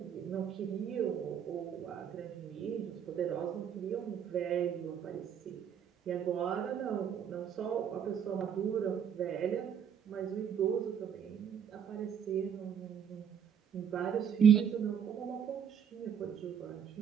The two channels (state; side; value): quieter; left; 8.1 dB